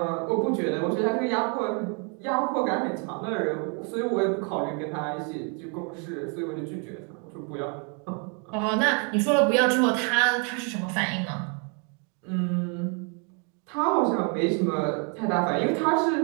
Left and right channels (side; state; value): left; quieter; 37.6 dB